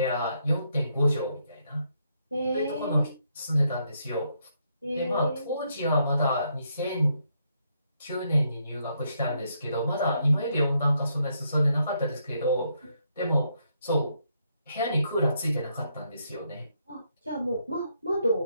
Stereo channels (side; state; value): both; inverted; correlation -0.76